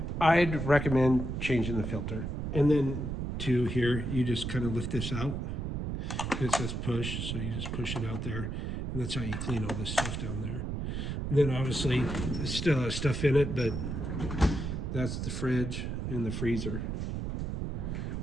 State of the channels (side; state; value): right; noise; rumble, 3 dB below the sound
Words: I'd recommend changing the filter. And then to here, you just kind of lift this out. It says push, so you just push it out there. And that's how you clean all this stuff down there. And then obviously, there's still has stuff in it, but that's the fridge and the freezer.